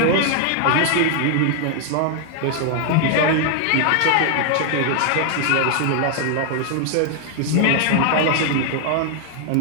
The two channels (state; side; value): different; both; correlation 0.00